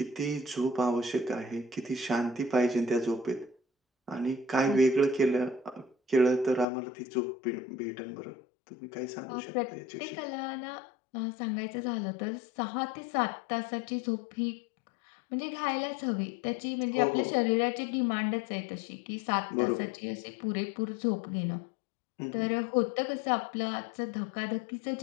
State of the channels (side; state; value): right; drops out; at 6.7 s